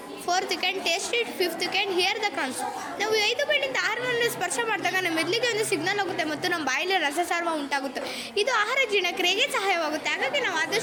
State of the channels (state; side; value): identical; both; correlation 1.00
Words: fourth you can taste it, fifth you can hear the crunch. ನಾವು 5 ಬೆಳೆಯಿಂದ ಆಹಾರವನ್ನು ಸ್ಪರ್ಶ ಮಾಡಿದಾಗ ನಮ್ಮ ಮೆದುಳಿಗೆ ಒಂದು ಸಿಗ್ನಲ್ ಆಗುತ್ತೆ ಮತ್ತು ನಮ್ಮ ಬಾಯಲ್ಲಿ ರಸಸಾರ್ವ ಉಂಟಾಗುತ್ತೆ. ಇದು ಆಹಾರ ಜೀರ್ಣಕ್ರಿಯೆಗೆ ಸಹಾಯವಾಗುತ್ತೆ. ಹಾಗಾಗಿ ನಾವು